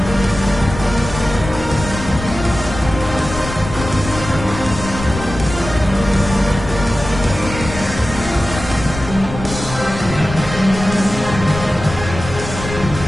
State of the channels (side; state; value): left; noise; rumble, 9 dB below the sound